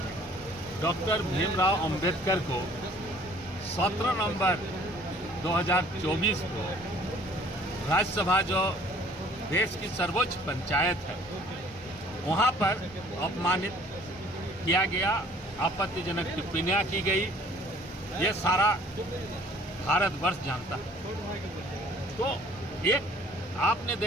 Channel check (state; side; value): normal; both; correlation 0.54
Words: डॉक्टर भीमराव अंबेडकर को 17 नवंबर 2024 को राज्यसभा, जो देश की सर्वोच्च पंचायत है, वहाँ पर अपमानित किया गया, आपत्तिजनक टिप्पणियाँ की गई। ये सारा भारतवर्ष जानता है। तो एक आपने